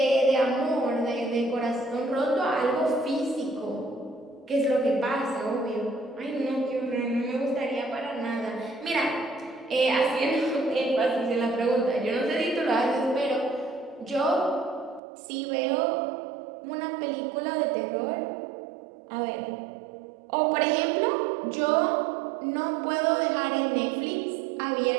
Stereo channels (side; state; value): left; drops out; at 15.0 s